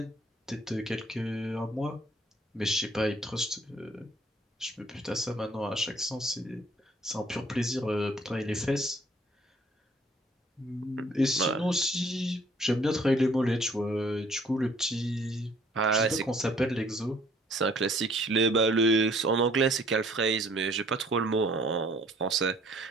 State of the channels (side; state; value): both; normal; correlation 0.59